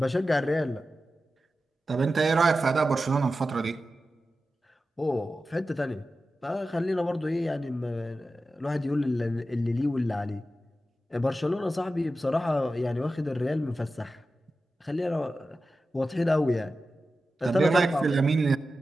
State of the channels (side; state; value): both; normal; correlation 0.93